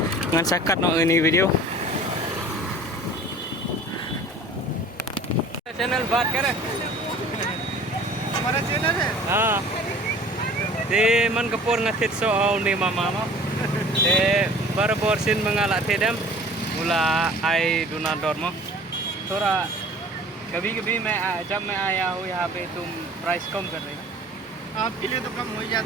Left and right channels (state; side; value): normal; both; correlation 0.47